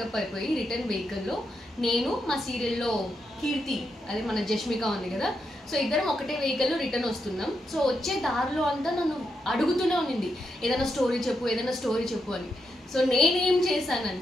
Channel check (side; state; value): both; normal; correlation 0.83